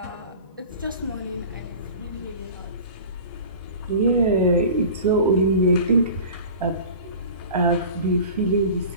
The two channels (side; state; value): both; inverted; correlation -0.38